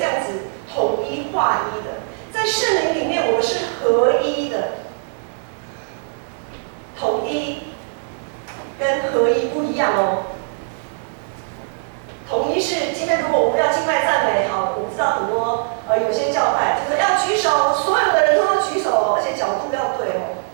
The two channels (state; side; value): silent; left; 64 dB below the other